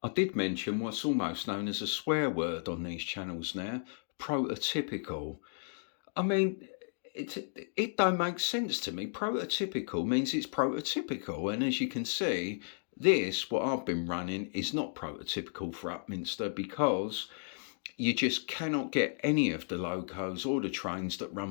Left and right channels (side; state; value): right; silent; digital silence